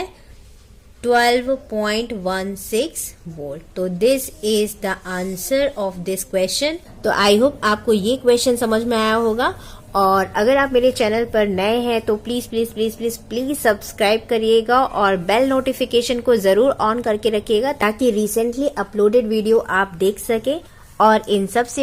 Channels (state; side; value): identical; both; correlation 1.00